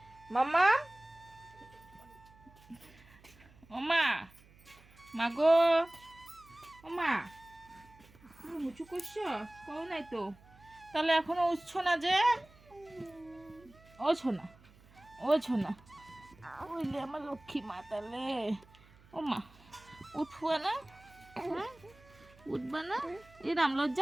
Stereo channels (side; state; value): right; noise; hum, 25 dB below the sound